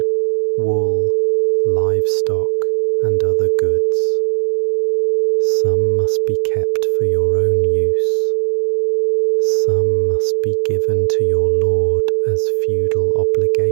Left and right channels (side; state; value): left; silent; 64 dB below the other